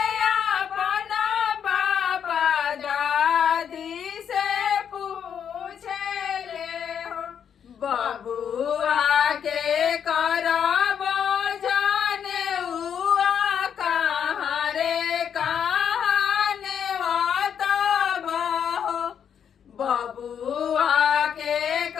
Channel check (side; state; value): right; quieter; 8.1 dB